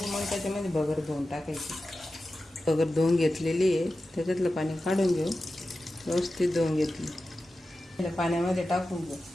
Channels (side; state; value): both; normal; correlation 0.93